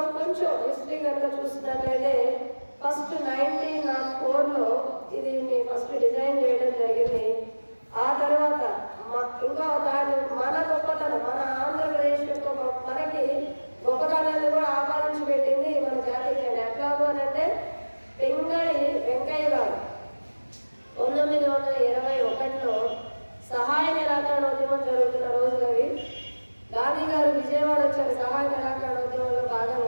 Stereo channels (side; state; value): both; inverted; correlation -1.00